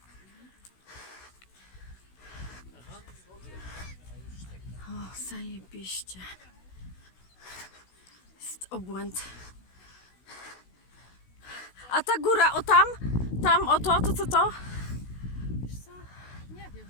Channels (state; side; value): late; right; 16 ms